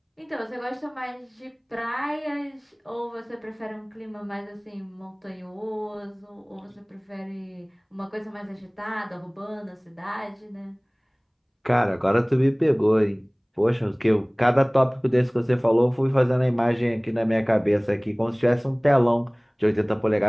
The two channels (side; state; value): both; identical; correlation 1.00